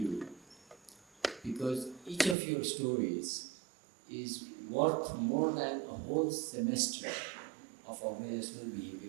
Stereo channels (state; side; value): drops out; left; at 2.4 s